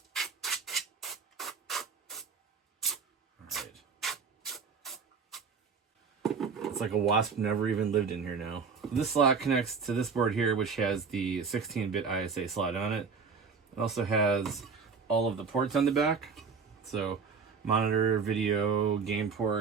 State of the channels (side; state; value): left; quieter; 5.4 dB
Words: It's like a wasp never even lived in here now. This slot connects to this board here, which has the 16-bit ISA slot on it. It also has all of the ports on the back. So monitor, video, game